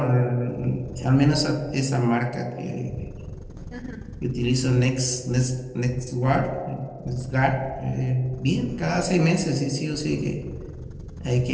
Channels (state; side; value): identical; both; correlation 1.00